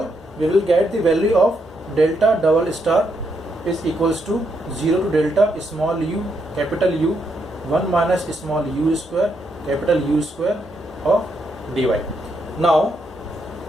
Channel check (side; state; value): both; normal; correlation 0.78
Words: we will get the value of delta double star is equals to 0 to delta small u capital U 1 minus small u square capital U square of dy. Now